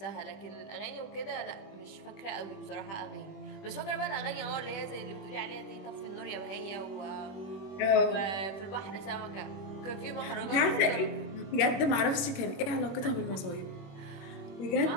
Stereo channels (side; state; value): right; late; 21 ms